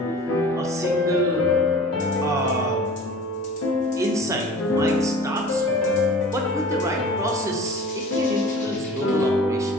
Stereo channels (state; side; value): normal; both; correlation 0.41